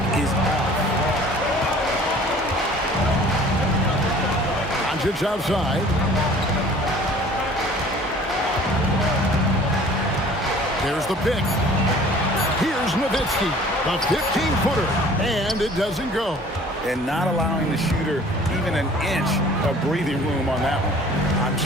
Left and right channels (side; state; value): both; normal; correlation 0.49